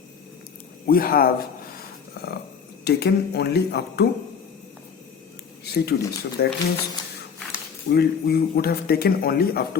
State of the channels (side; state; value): right; quieter; 6.5 dB